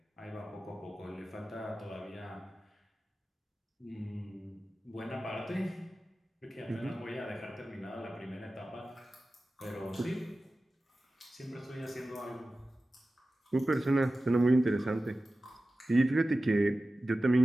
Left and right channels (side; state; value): both; normal; correlation 0.95